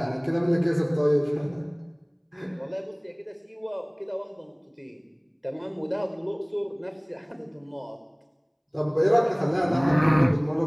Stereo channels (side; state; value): both; identical; correlation 1.00